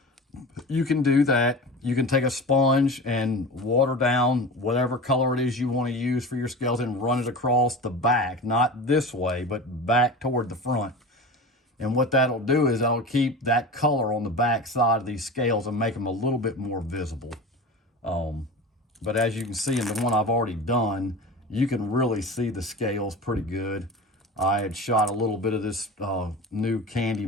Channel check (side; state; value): both; normal; correlation 0.32